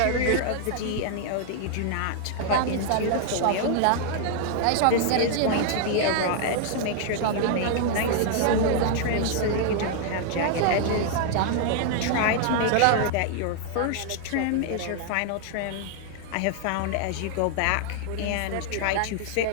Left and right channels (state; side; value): different; both; correlation -0.01